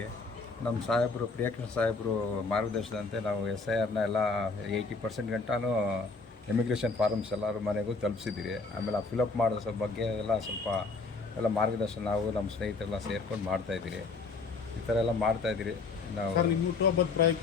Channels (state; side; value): quieter; right; 4.1 dB